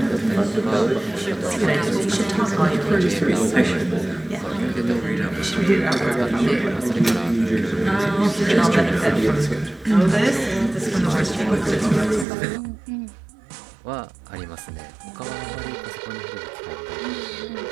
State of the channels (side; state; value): left; drops out; at 12.2 s